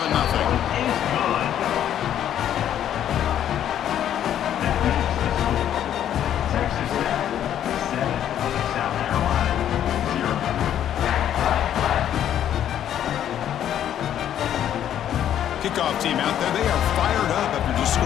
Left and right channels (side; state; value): right; quieter; 10.5 dB